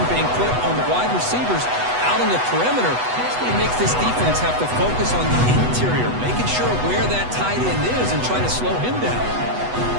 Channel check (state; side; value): late; left; 8.1 ms